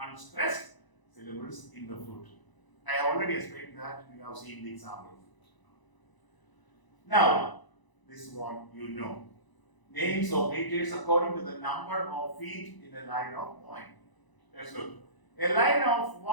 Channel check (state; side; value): late; right; 1.0 ms